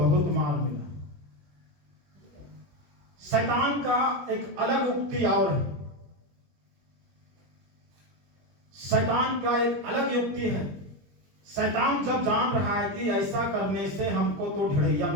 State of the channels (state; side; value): late; left; 21 ms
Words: मार मिला। शैतान का एक अलग युक्ति और है, शैतान का एक अलग युक्ति है। शैतान जब जान रहा है कि ऐसा करने से हमको तो ढड़ैया